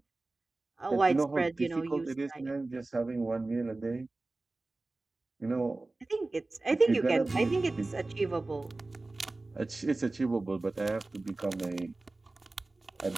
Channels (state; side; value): quieter; left; 3.1 dB